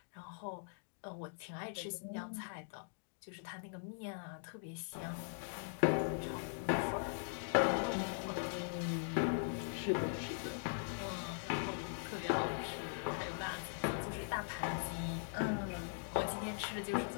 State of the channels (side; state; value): right; silent; digital silence